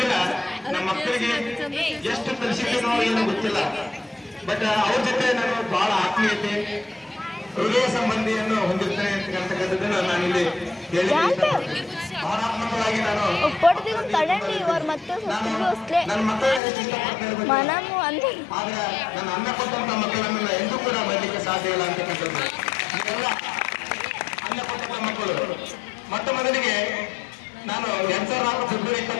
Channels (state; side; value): drops out; right; at 16.6 s